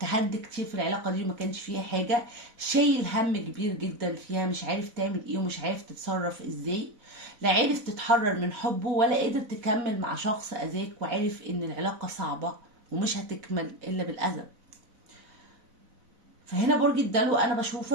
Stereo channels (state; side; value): late; left; 4.0 ms